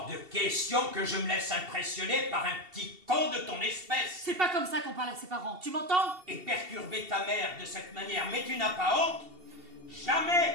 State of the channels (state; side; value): late; left; 2.7 ms